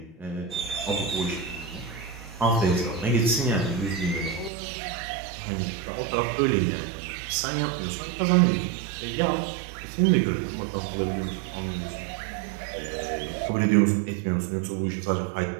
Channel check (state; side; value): drops out; left; at 4.5 s